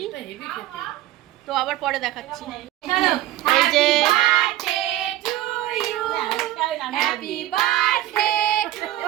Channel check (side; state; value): left; quieter; 14.3 dB